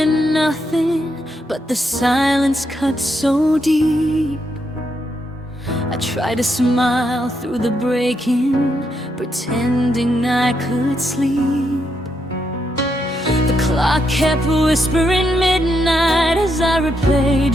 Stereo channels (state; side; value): normal; both; correlation 0.79